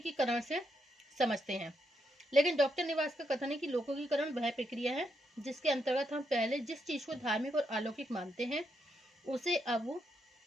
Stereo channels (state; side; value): normal; both; correlation 0.80